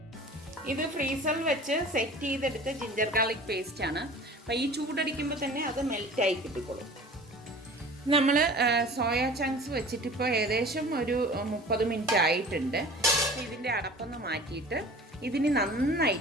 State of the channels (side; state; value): both; normal; correlation 0.42